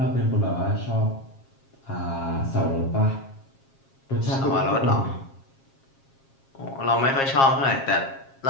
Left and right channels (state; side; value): late; right; 7.4 ms